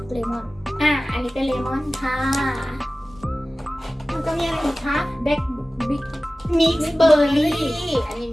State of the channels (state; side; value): normal; both; correlation 0.97